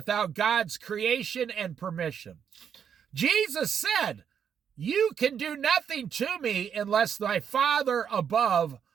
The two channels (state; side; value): quieter; left; 7.9 dB